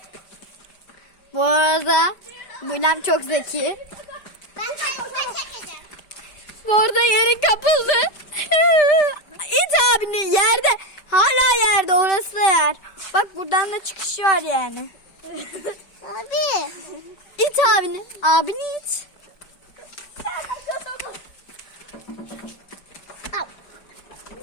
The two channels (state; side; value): late; right; 5.0 ms